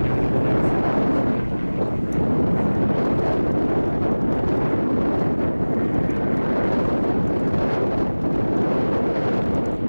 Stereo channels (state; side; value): inverted; both; correlation -1.00